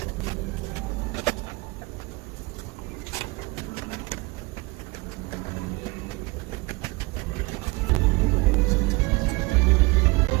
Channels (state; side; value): quieter; left; 24.4 dB